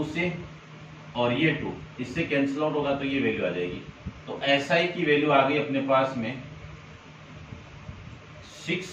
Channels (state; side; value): identical; both; correlation 1.00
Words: से और ये 2 इससे कैंसिल आउट होगा तो ये वैल्यू आ जाएगी। तो SI की वैल्यू आ गई अपने पास में